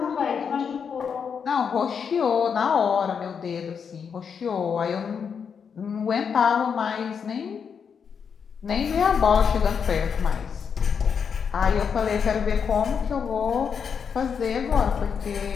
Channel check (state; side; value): quieter; right; 6.7 dB